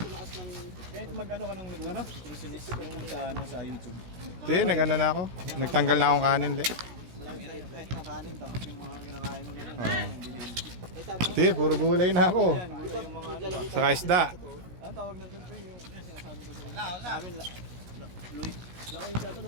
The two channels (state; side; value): late; left; 17 ms